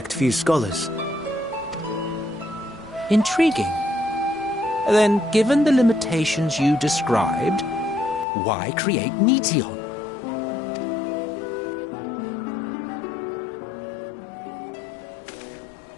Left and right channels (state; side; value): drops out; right; at 8.2 s